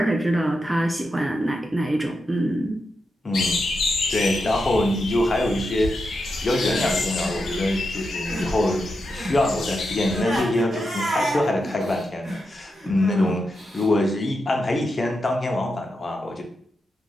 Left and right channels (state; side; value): normal; both; correlation 0.87